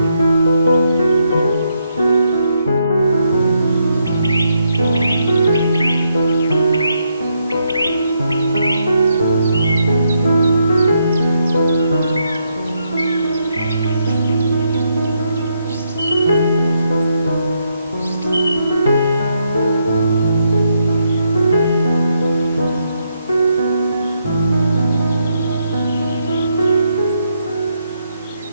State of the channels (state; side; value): inverted; both; correlation -0.78